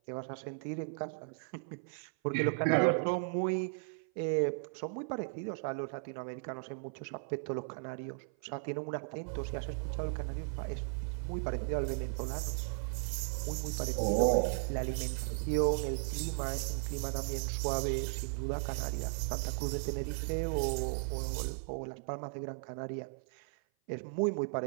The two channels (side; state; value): left; silent; 54 dB below the other